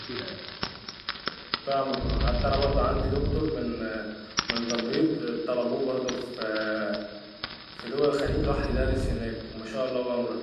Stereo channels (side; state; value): both; identical; correlation 1.00